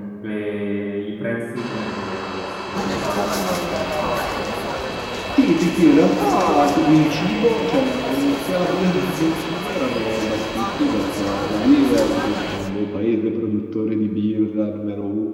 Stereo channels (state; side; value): identical; both; correlation 1.00